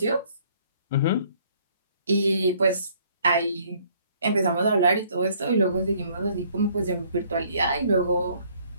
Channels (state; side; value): inverted; both; correlation -0.62